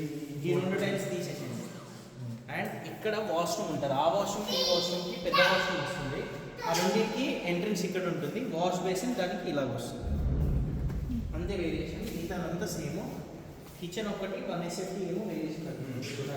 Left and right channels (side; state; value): both; identical; correlation 1.00